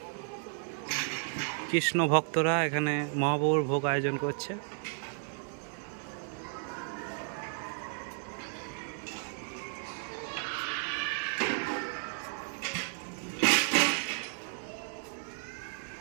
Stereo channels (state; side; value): silent; left; 56 dB below the other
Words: কৃষ্ণ ভক্তরা এখানে মহাপ্রভুর ভোগ আয়োজন করছে।